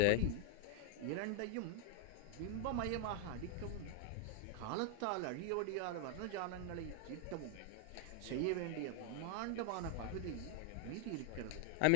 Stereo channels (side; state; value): both; different; correlation 0.00